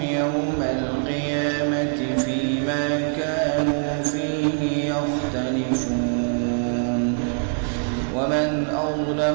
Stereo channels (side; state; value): left; silent; 56 dB below the other